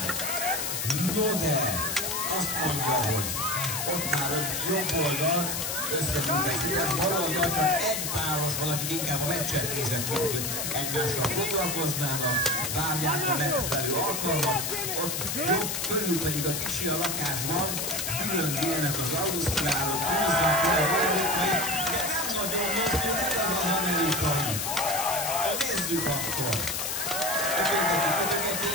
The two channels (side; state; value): left; noise; hiss, 2 dB below the sound